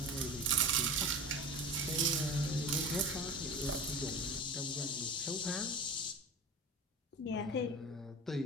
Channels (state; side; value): normal; both; correlation 0.32